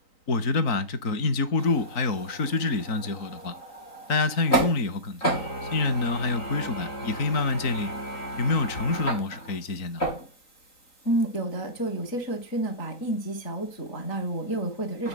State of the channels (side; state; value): right; late; 3.9 ms